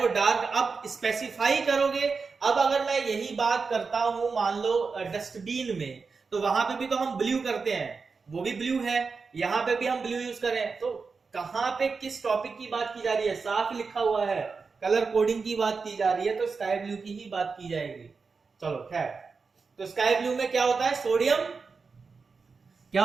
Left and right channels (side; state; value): left; quieter; 4.8 dB